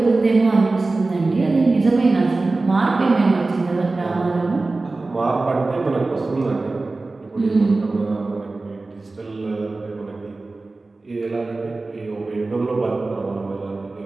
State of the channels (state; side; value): quieter; left; 3.4 dB